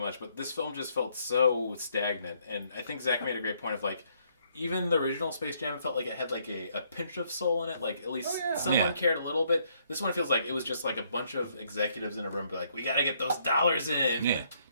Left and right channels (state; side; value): inverted; both; correlation -0.69